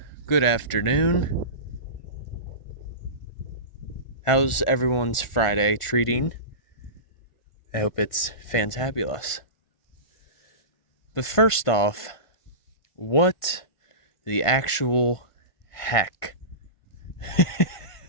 Good afternoon. How's everyone's Friday treating? I hope it's fantabulous. But first off, what the actual heck?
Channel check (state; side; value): late; right; 1.5 ms